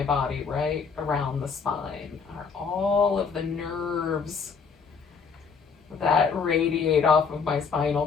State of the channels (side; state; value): right; quieter; 5.7 dB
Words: body, right around the spine, are all of the nerves that radiate off of my spinal